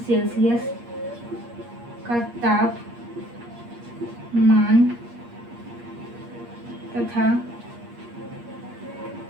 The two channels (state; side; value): late; left; 8.5 ms